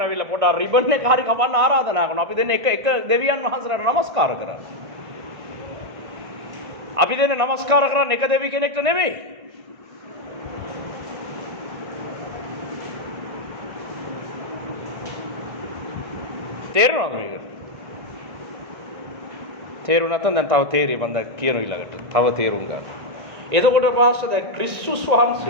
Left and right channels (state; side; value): late; left; 1.5 ms